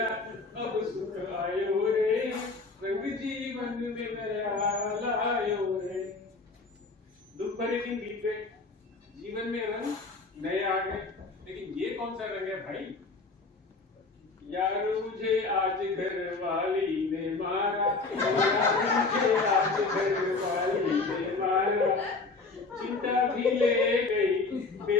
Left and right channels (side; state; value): right; quieter; 3.9 dB